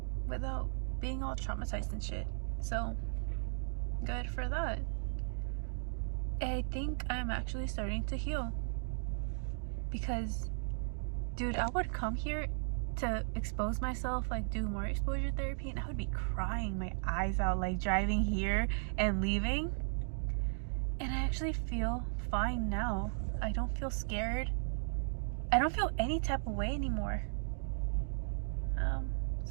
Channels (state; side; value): silent; left; digital silence